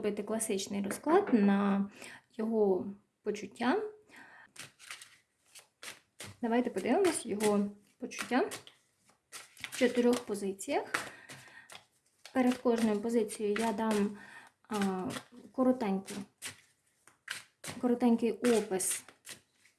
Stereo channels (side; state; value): both; identical; correlation 1.00